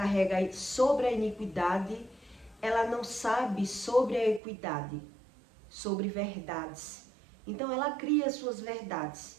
sobre a iniquidade, ela não sabe sobre a equidade, sobre verdades. Então ela cria suas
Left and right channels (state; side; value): drops out; left; at 4.4 s